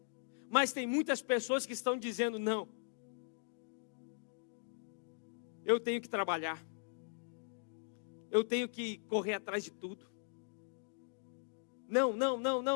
Mas tem muitas pessoas que estão dizendo: não, eu tenho que trabalhar, eu tenho que correr atrás de tudo. Não,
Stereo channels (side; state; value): right; silent; digital silence